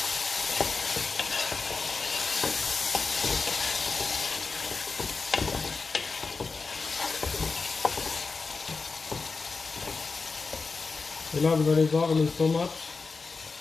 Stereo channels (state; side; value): quieter; right; 4.4 dB